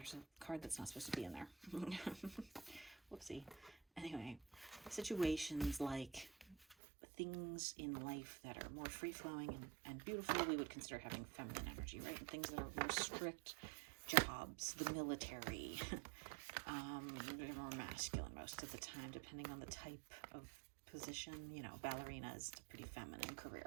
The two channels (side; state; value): left; drops out; at 6.8 s